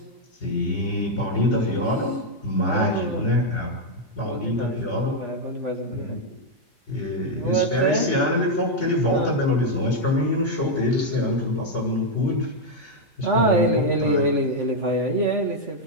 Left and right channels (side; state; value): both; normal; correlation 0.00